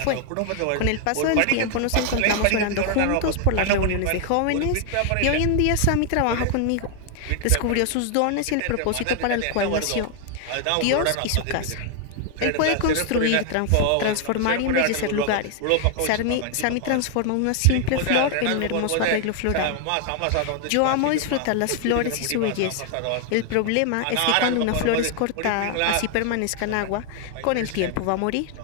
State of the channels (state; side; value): different; both; correlation 0.00